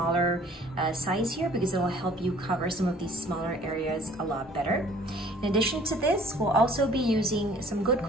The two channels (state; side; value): normal; both; correlation 0.54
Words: size here because it will help you cover some of these smaller areas a lot better. In addition to this, we'll also be using some good